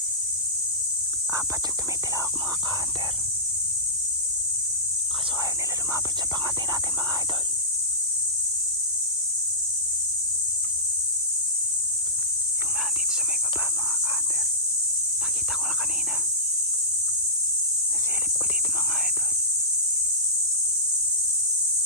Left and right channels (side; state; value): both; normal; correlation -0.13